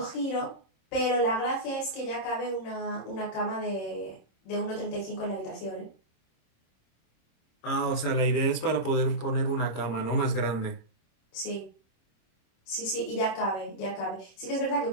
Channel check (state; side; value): late; right; 26 ms